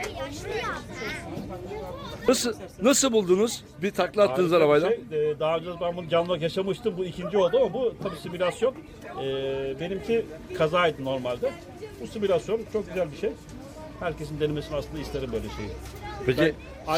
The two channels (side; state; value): both; identical; correlation 1.00